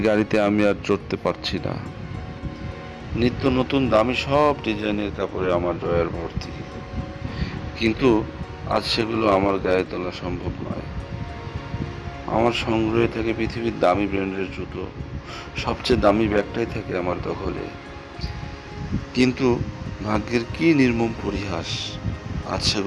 গাড়িতে আমি আর চড়তে পারছি না। নিত্য নতুন দামি সব ডিজাইনের কাপড়ে আমার ড্রয়ার ভর্তি, কিন্তু আজ সেগুলো আমার গায়ে তোলা সম্ভব নয়। আমার সংগ্রহে থাকে পৃথিবীর দামি ব্র্যান্ডের জুতো, সবচেয়ে দামি ব্যাগটাই থাকে আমার দখলে। কিন্তু ভাগ্যের কি নির্মম পরিহাস, আজ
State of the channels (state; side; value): identical; both; correlation 1.00